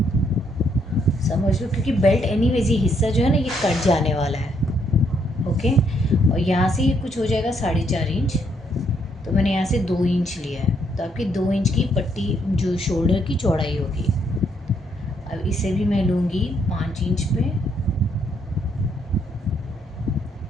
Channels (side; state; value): both; normal; correlation 0.72